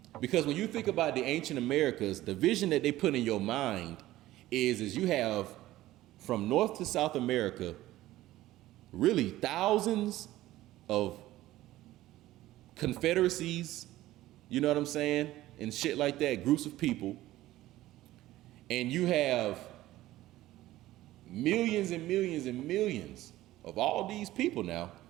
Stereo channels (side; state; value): left; quieter; 15.7 dB